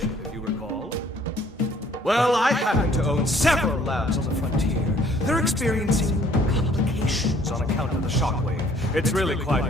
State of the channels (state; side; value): normal; both; correlation 0.59